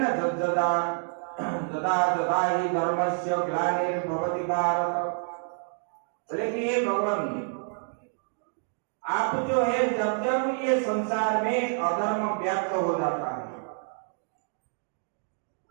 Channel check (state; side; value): silent; left; 59 dB below the other